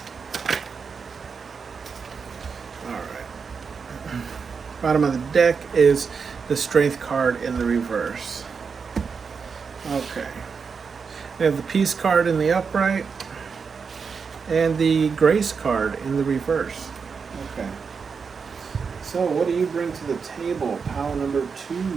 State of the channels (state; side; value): quieter; left; 5.6 dB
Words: Alright. Bottom of the deck is the strength card in the reverse. Okay. We have the peace card in the upright and the grace card in the reverse. Okay. So what do you bring to the table? Pile number